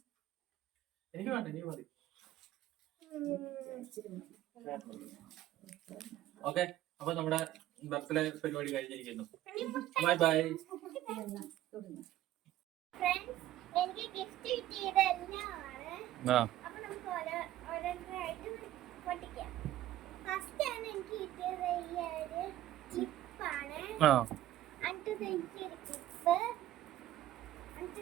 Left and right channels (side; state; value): left; quieter; 13.7 dB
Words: എനിക്ക് വേണ്ട, നീ മതി. ഓക്കെ, അപ്പൊ നമ്മുടെ ബർത്ത്ഡേ പരിപാടി കഴിഞ്ഞിരിക്കുന്നു. Bye bye. എനിക്ക് ഗിഫ്റ്റ് കിട്ടിയതെല്ലാമാണ്. അപ്പൊ നമുക്ക് ഓരോന്നായിട്ട് പൊട്ടിക്കാം. ഫസ്റ്റ് ആണ് എനിക്ക് കിട്ടിയത് ഈ ഒരു ക്ലിപ്പാണ്. അടുത്തത് എനിക്ക് ഒരു ക്ലിപ്പ്,